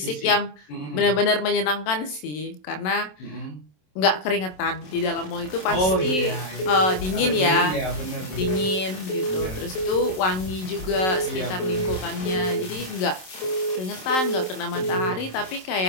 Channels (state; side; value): late; right; 27 ms